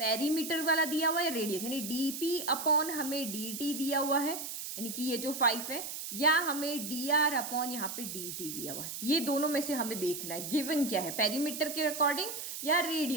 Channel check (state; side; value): noise; right; hiss, 7 dB below the sound